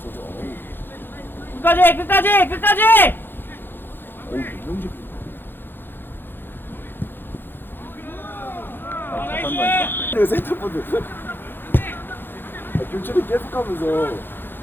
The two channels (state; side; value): late; right; 0.10 ms